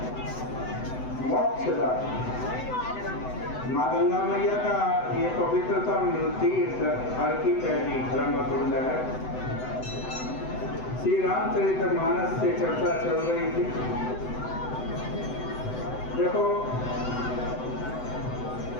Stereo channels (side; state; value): right; late; 7.9 ms